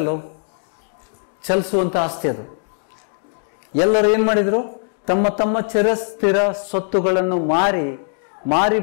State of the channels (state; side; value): silent; right; digital silence